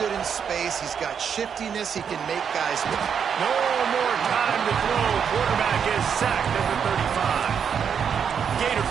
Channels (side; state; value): left; quieter; 7.3 dB